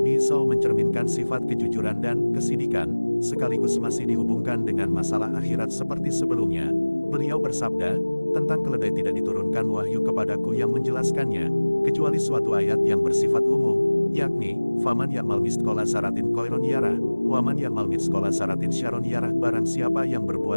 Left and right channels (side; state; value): both; inverted; correlation -1.00